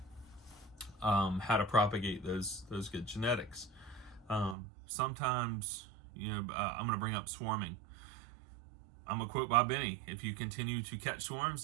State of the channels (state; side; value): drops out; left; at 4.5 s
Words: how to propagate those good genetics. Sometimes, I'm going to bring up swarming. I'm going to quote Bob Benny: if you continue to catch swarms,